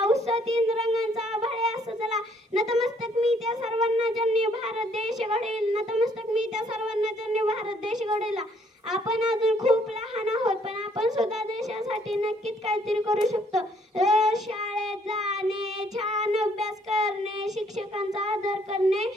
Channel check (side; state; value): both; normal; correlation 0.66